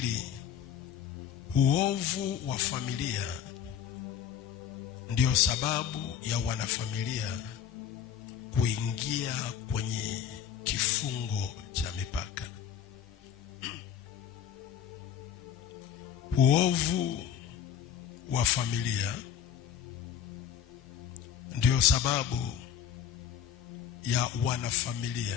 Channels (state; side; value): quieter; right; 8.7 dB